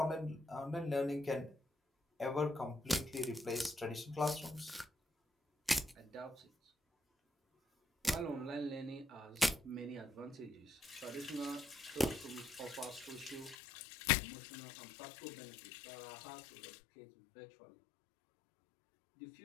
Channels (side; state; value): right; drops out; at 13.6 s